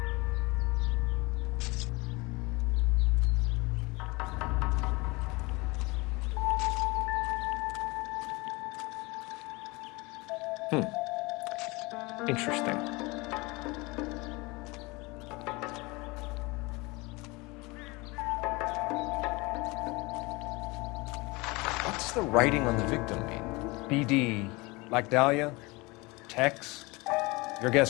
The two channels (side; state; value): right; quieter; 24.5 dB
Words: Interesting. What's the writing on the victim mean? BD, like Dahlia, Tex. Your